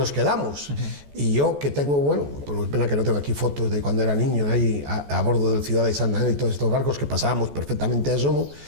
quedamos. Y yo que tengo, bueno, pues pena que no tengo aquí fotos de cuando era niño, ahí a bordo del Ciudad de Santander y todos estos barcos que pasábamos perfectamente a Somo,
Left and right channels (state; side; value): late; left; 14 ms